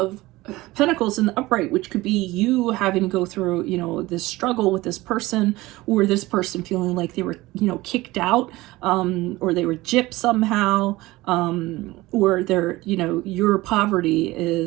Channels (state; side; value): quieter; left; 19.3 dB